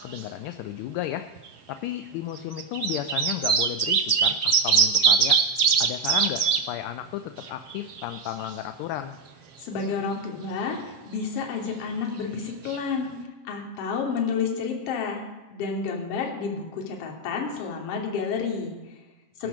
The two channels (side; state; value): right; late; 7.5 ms